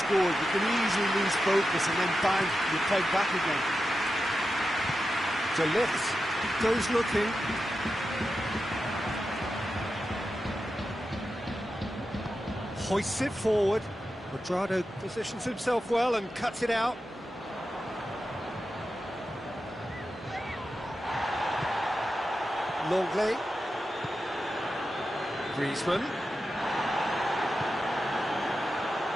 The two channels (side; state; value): both; normal; correlation 0.90